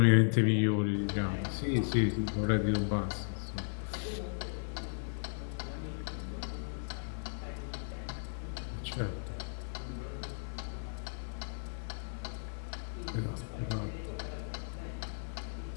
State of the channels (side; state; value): right; silent; 54 dB below the other